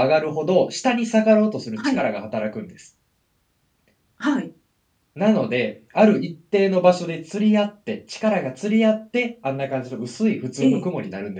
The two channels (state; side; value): identical; both; correlation 1.00